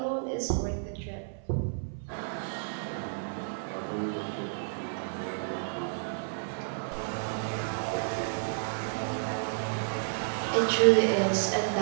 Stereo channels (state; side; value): silent; left; 57 dB below the other